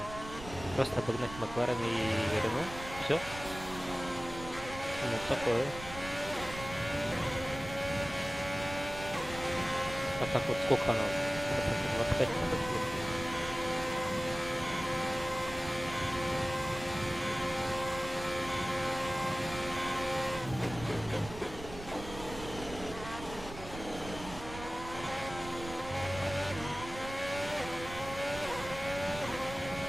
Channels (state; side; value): noise; right; rumble, 12 dB below the sound